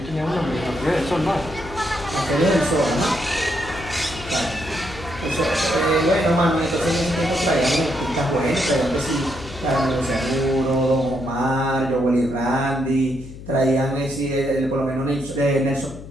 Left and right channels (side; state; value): left; noise; hum, 14 dB below the sound